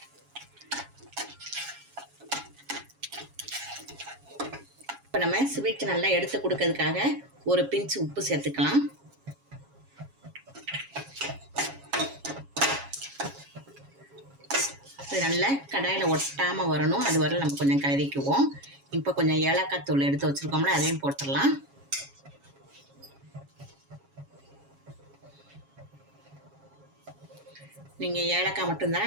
இப்போ நம்ம ஸ்வீட் நல்லா எடுத்து கொடுக்கறதுக்காக 1 பிஞ்ச் உப்பு சேர்த்துக்கலாம். இது நல்லா கடாயில் ஒட்டாமல் வரணும், அது வரை நம்ம கொஞ்சம் கலரிக்குவோம். இப்போ கொஞ்சம் ஏலக்காய் தூள் எடுத்து வச்சுருக்கோம்ல, அதையும் போட்டுடலாம். நீங்கள் ஏலக்காய்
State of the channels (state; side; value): late; left; 7.3 ms